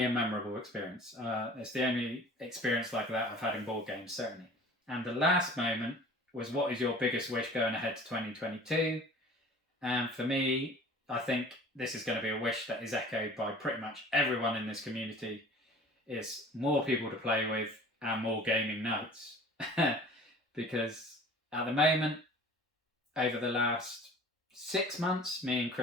a memorable experience. It's the only experience like that I've had in board games, certainly. And the last moment was, what is your biggest wish going ahead to 2022? And for me, I think this is going to be a wish that is echoed by pretty much everyone in this community, is more people to play with and more gaming nights. Because at the moment, over the last 6 months, me and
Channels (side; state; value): both; normal; correlation 0.45